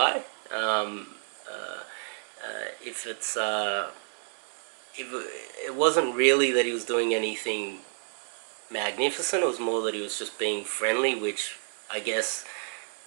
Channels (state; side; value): silent; left; digital silence